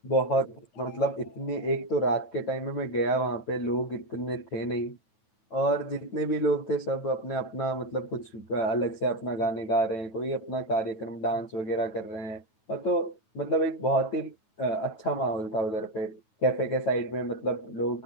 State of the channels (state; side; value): late; right; 9.2 ms